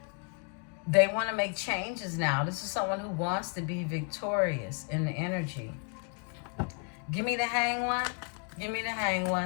They want to make changes now. This is someone who wants to be victorious in the energy. Give me the Hang One. Give me the Hang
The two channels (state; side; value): quieter; right; 40.0 dB